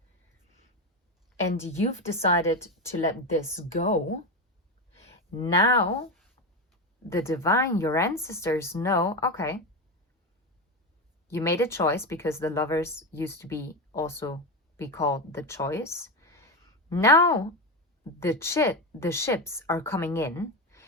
And you've decided to let this go. Now, the divine, your ancestors know, okay, you made a choice, because the Lovers used to be called the choice. Now, the ships are coming in,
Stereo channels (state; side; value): normal; both; correlation 0.15